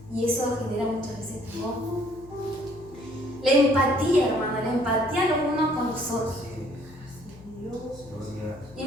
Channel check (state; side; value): noise; left; hum, 20 dB below the sound